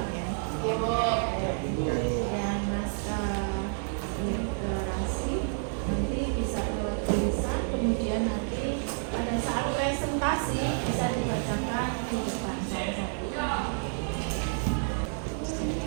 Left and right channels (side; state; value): left; silent; digital silence